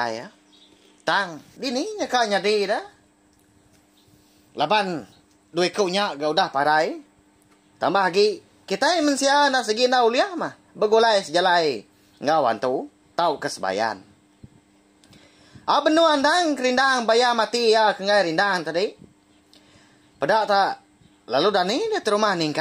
ya tang dini nya ka nyadi dah laban duit kau nya ga udah parai tambah lagi kita mensia nak segi na uliah mah begulai sejalai ngawan tu tau kesebayan. Benu andang kerindang bayar mati ya kengai rindang tadi. Pedak tak. Lalu dani dia terumah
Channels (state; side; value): identical; both; correlation 1.00